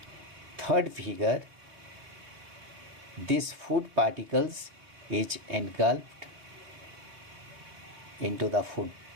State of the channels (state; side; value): late; left; 3.0 ms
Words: Third figure, this food particles is engulfed into the food